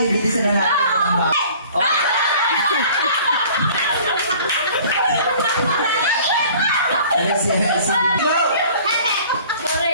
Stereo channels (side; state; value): both; inverted; correlation -0.49